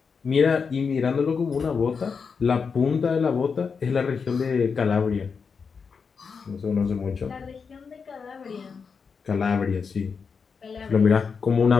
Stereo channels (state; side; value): quieter; right; 5.6 dB